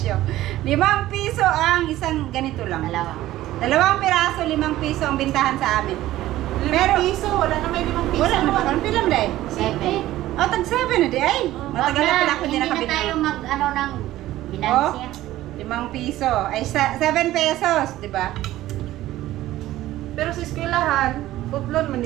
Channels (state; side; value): quieter; left; 15.1 dB